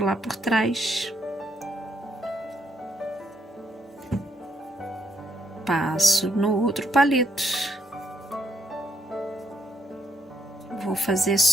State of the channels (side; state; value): both; normal; correlation 0.74